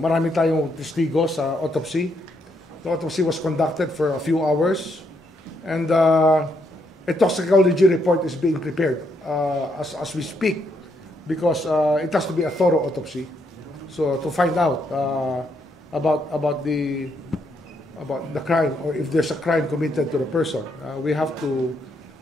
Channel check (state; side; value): normal; both; correlation 0.76